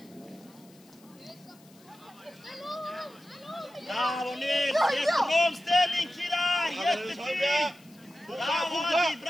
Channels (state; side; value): noise; left; hiss, 27 dB below the sound